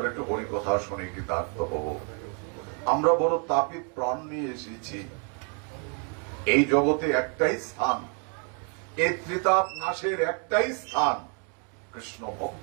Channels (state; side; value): quieter; left; 38.2 dB